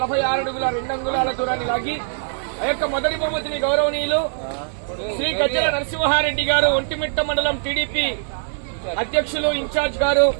అడుగుల 2 అంగుళాల దూరాన్ని లాగి ఆ యొక్క మొదటి బహుమతిని గౌరవనీయులు శ్రీ గజ్జల నరసింహారెడ్డి గారు, ఒంటిమిట్ట మండలం టీడీపీ అధ్యక్షులు ఇన్ఛార్జ్ గారు,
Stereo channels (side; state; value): left; silent; 60 dB below the other